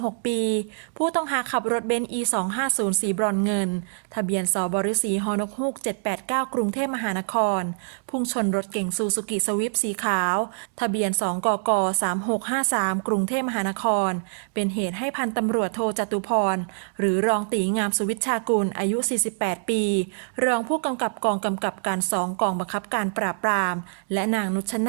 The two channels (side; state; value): left; silent; digital silence